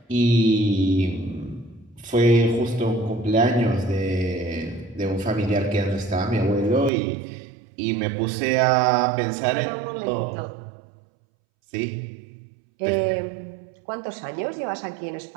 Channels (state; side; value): drops out; left; at 6.9 s